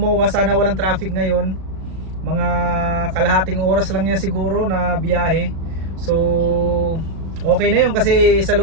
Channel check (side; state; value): left; late; 36 ms